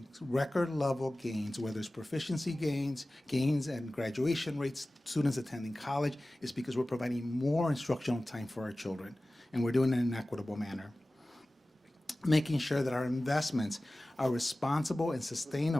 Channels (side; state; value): both; normal; correlation 0.97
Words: record level gains, whether it's proficiency gains and graduation rates, students attending college, is because we're providing more instructional time for our children, and we're doing it in an equitable manner. Making sure that our investments are responsible and